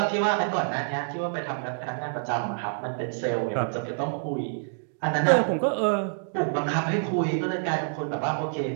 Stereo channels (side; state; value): left; silent; digital silence